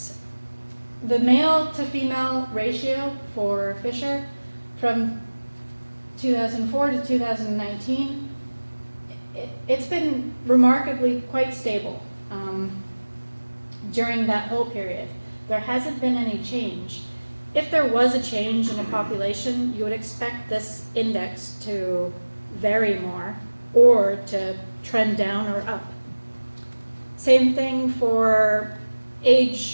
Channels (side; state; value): both; inverted; correlation -1.00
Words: The male to female ratio for Fisher from 2004 to 2019, it's been remarkably quite stable during that whole period. There hasn't been any change. If there was a change in a population, you would expect this index to vary more or to trend down or up. Same thing for